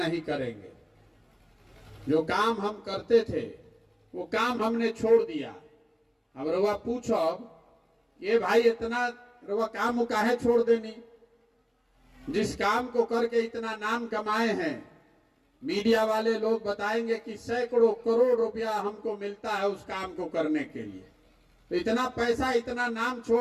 करेंगे। जो काम हम करते थे वो काम हमने छोड़ दिया। अब रवा पूछो, ये भाई इतना रवा काम काहे छोड़ देनी? जिस काम को करके इतना नाम कमाए हैं, मीडिया वाले लोग बताएंगे कि सैकड़ों करोड़ रुपया हमको मिलता है उस काम को करने के लिए। तो इतना पैसा, इतना नाम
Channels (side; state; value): both; identical; correlation 1.00